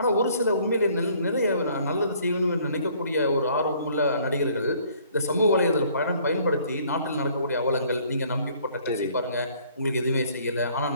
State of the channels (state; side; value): inverted; both; correlation -0.60